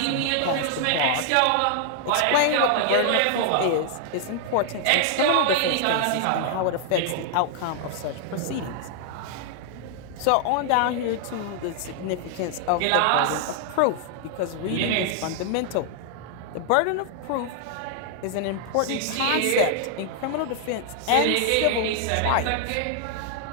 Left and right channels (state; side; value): different; both; correlation 0.00